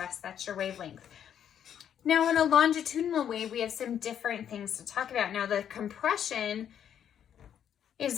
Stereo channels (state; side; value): quieter; right; 9.2 dB